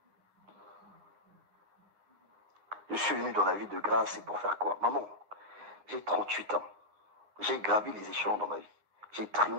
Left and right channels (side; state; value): left; late; 9.7 ms